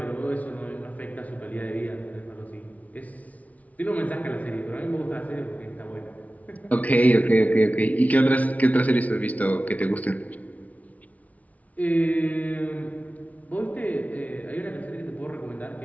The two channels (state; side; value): late; right; 0.071 ms